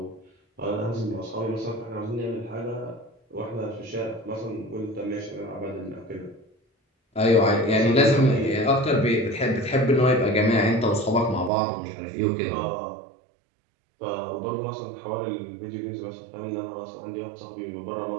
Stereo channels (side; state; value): left; drops out; at 11.5 s